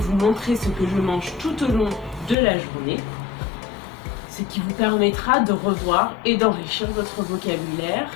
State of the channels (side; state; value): right; drops out; at 2.4 s